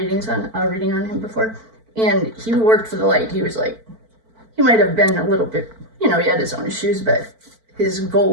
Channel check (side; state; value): left; late; 4.5 ms